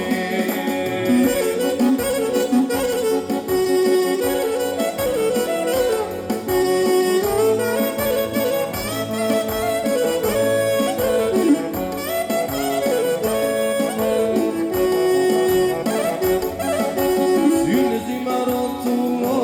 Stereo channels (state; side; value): identical; both; correlation 1.00